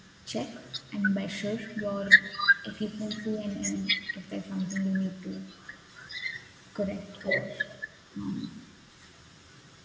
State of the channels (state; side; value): identical; both; correlation 1.00